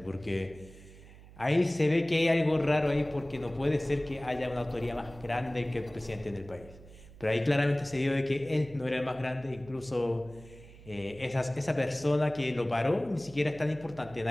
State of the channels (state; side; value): noise; right; hum, 20 dB below the sound